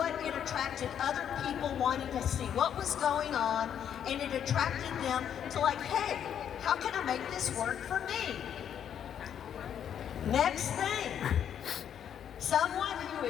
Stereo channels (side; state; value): right; quieter; 9.0 dB